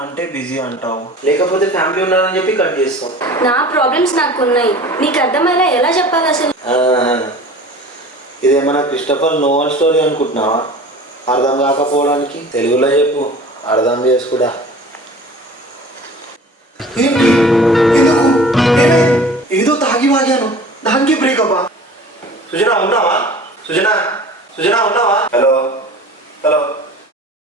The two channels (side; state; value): both; normal; correlation 0.42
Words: అంటే బిజీ అంటావు, లేకపోతే ఫ్యామిలీ ఉన్నారని చెప్పి కట్ చేస్తావు. నా ప్రాబ్లమ్స్ నాకు ఉన్నాయి, నీకు అర్థమయ్యేలా ఎలా చెప్పాలి అసలు? ఇదేమన్నా క్రిస్టఫర్ నోవెల్ స్టోరీ అనుకుంటున్నావా? అర్థం కాకపోవడానికి తెలుగులో చెప్పు, అర్థం చేసుకుడా. ఏదో తాగి వాగాను, దానికి బ్రేకప్. సుజనా ఉన్నావా? సుజనా సుజనా ఉన్నావా? Hello hello.